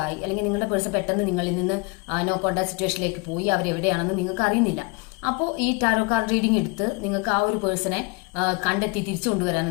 അല്ലെങ്കിൽ നിങ്ങളുടെ പേഴ്സൺ പെട്ടെന്ന് നിങ്ങളിൽ നിന്ന് നോ കോണ്ടാക്ട് സിറ്റുവേഷനിലേക്ക് പോയി അവരെവിടെയാണെന്ന് നിങ്ങൾക്ക് അറിയുന്നില്ല. അപ്പോൾ ഈ ടാരോ കാർഡ് റീഡിംഗ് എടുത്ത് നിങ്ങൾക്ക് ആ ഒരു പേഴ്സണെ കണ്ടെത്തി തിരിച്ചു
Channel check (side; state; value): right; quieter; 28.9 dB